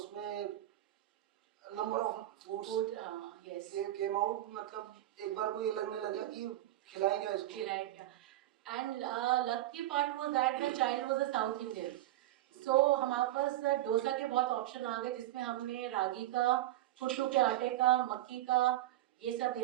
number of foods came out, मतलब एक बार को ये लगने लगा कि खिलाएंगे इसको, खिलाएंगे। And lucky part was that the child was a South Indian. So हमारे पास डोसा के बहुत ऑप्शन आ गए, जिसमें हमने रागी का, कुट्टू के आटे का, मक्की का, ये सब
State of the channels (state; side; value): quieter; left; 14.7 dB